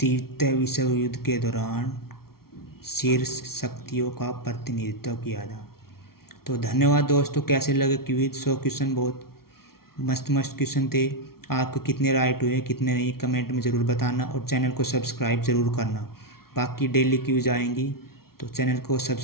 विश्व युद्ध के दौरान शीर्ष शक्तियों का प्रतिनिधित्व किया था। तो धन्यवाद दोस्तों, कैसे लगे क्विज? 100 क्वेश्चन बहुत मस्त क्वेश्चन थे। आपको कितने राइट हुए कितने नहीं कमेंट में ज़रूर बताना और चैनल को सब्सक्राइब ज़रूर करना। बाकी डेली क्विज आएंगी तो चैनल को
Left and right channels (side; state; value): right; late; 0.94 ms